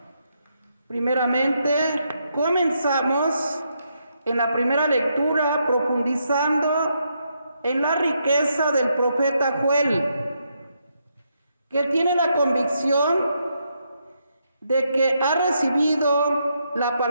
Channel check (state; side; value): inverted; both; correlation -0.79